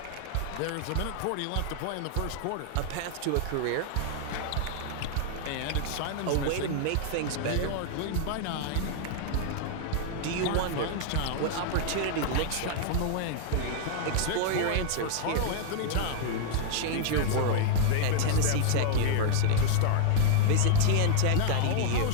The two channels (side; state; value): both; different; correlation 0.00